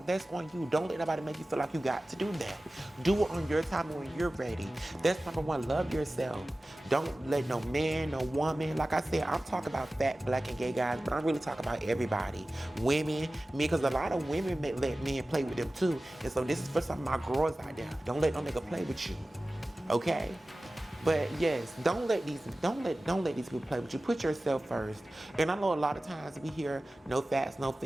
that's on you. Don't let nobody make you feel like you got to do that. Do it on your time when you're ready. That's number one. Love yourself. Don't let no man, no woman. Like I said, I'm talking about fat, black, and gay guys, but I'm really talking about everybody. Women, me, because a lot of women let men play with them too. And so this is for some of my girls out there. Don't let no nigga play with you. Okay? But yes, don't let these people play with you. Put yourself first. And I know a lot of times we hear no fats, no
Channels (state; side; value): normal; both; correlation 0.96